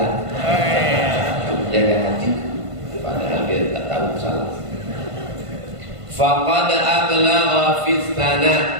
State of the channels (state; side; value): late; left; 1.5 ms